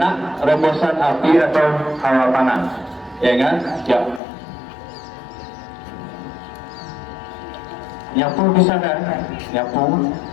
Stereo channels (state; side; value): drops out; right; at 4.2 s